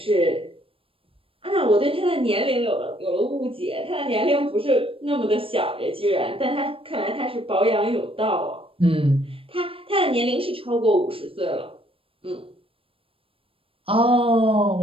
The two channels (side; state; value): left; late; 0.27 ms